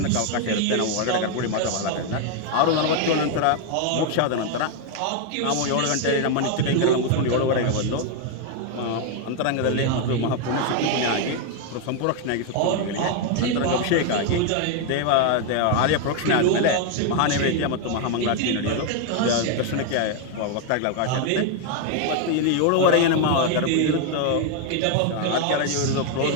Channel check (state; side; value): different; both; correlation 0.01